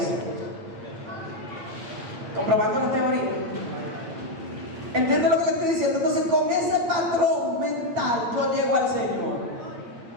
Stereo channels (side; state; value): left; late; 9.3 ms